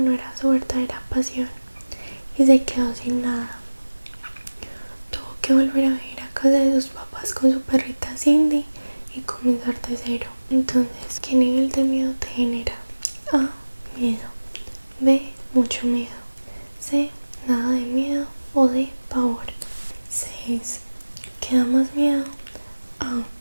era su verdadera pasión y se quedó sin nada. Tuvo que volver a vivir a casa de sus papás con su perrita Cindy y comenzar de cero. Entonces, ¿qué nivel de miedo te genera? A. Miedo. B. Mucho miedo. C. Nada de miedo. O D. Pavor. 6. ¿Qué da más miedo? A.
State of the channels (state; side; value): inverted; both; correlation -1.00